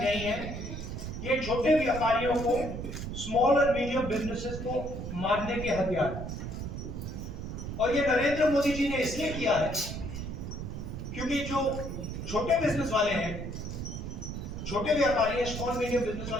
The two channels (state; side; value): noise; right; rumble, 6 dB below the sound